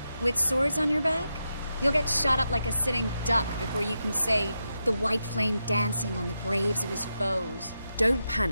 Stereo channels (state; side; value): inverted; both; correlation -0.87